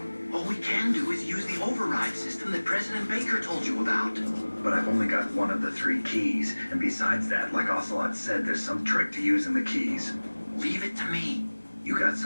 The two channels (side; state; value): both; inverted; correlation -1.00